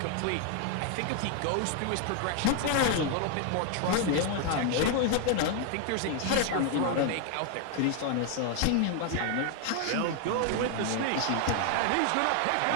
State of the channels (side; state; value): both; different; correlation 0.00